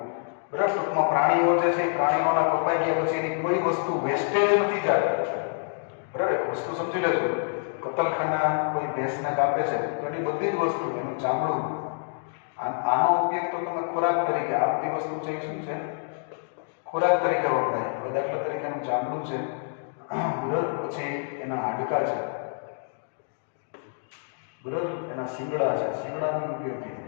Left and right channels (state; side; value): silent; right; digital silence